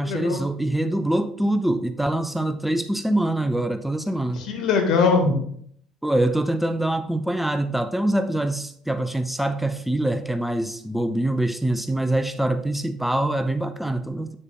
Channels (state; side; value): normal; both; correlation 0.81